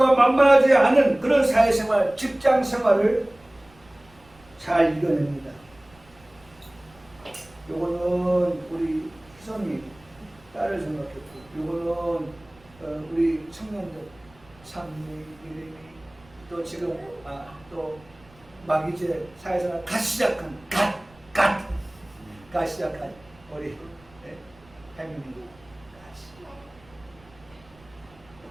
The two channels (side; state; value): right; noise; rumble, 27 dB below the sound